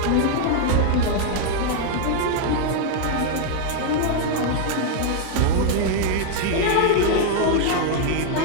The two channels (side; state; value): both; different; correlation 0.00